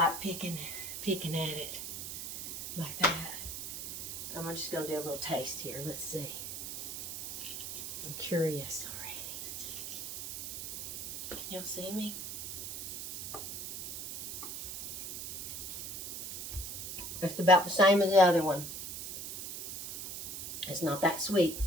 picking at it like that. I'm just going to do a little taste here. Let's see. I'm curious already. Can y'all see me? It's about the same as the other one. It's not that sweet.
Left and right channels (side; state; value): right; noise; hiss, 6 dB below the sound